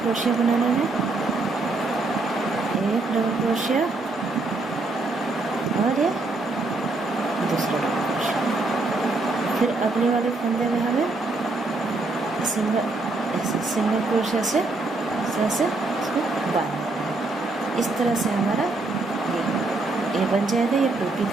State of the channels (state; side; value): quieter; left; 3.2 dB